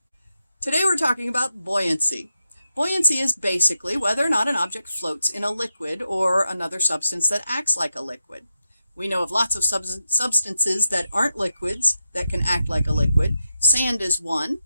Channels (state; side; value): inverted; both; correlation -0.88